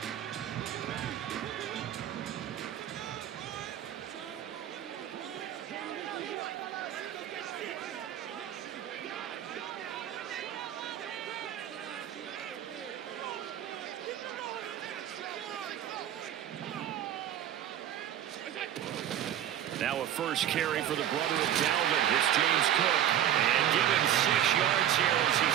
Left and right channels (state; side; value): quieter; left; 10.7 dB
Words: Now a first carry for the brother of Dalvin. It's James Cook. And give him 6 yards here as he